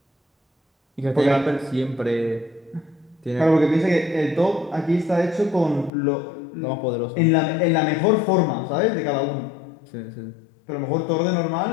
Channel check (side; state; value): right; drops out; at 5.9 s